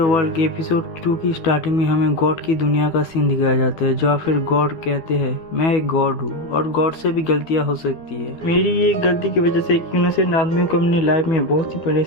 के episode 2 की starting में हमें गॉड की दुनिया का सीन दिखाया जाता है, जहाँ फिर गॉड कहते हैं मैं एक गॉड हूँ और गॉड से भी गलतियाँ हो सकती है। मेरी ये गलती की वजह से एक इनोसेंट आदमी को अपनी लाइफ में बहुत सी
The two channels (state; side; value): late; right; 12 ms